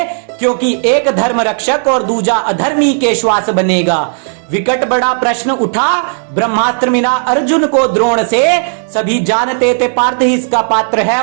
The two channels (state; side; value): silent; left; digital silence